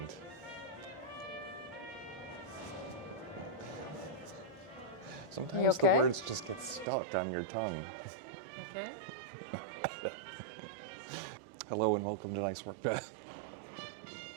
Sometimes okay? the words just get stuck on your tongue. Okay? Hello and welcome to Nice Work, Beth.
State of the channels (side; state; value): left; drops out; at 6.9 s